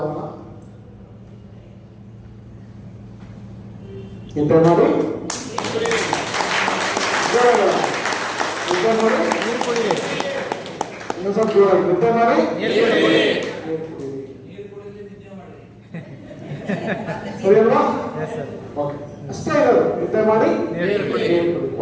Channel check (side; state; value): both; identical; correlation 1.00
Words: ನಿದ್ದೆ ಮಾಡಿ ಇನ್ನೂ ಸ್ವಲ್ಪ ಜೋರಾಗಿ ನಿದ್ದೆ ಮಾಡಿ ಸರಿ ಅಲ್ವಾ? ಅಷ್ಟೇ ಇರೋದು. ನಿದ್ದೆ ಮಾಡಿ